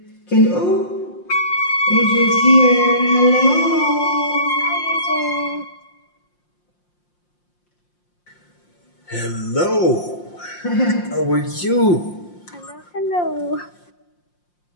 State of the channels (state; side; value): late; right; 5.7 ms